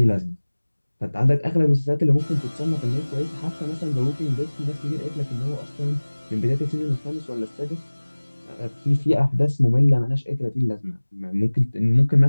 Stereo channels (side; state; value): both; inverted; correlation -1.00